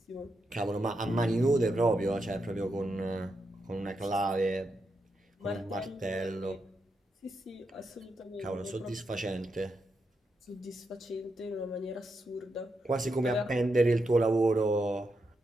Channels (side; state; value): both; normal; correlation 0.84